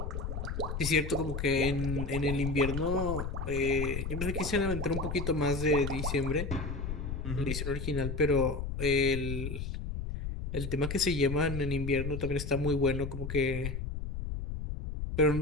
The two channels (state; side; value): noise; left; rumble, 4 dB below the sound